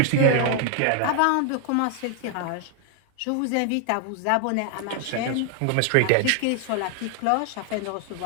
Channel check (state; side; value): different; both; correlation 0.00